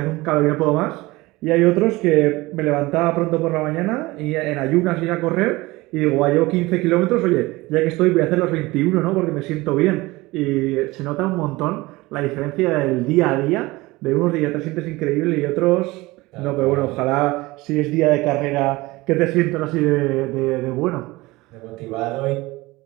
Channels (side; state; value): left; quieter; 20.9 dB